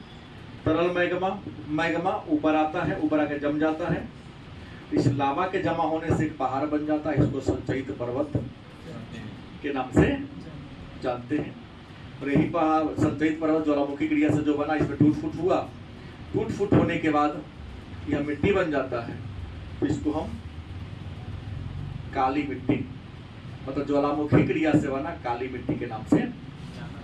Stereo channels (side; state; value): both; identical; correlation 1.00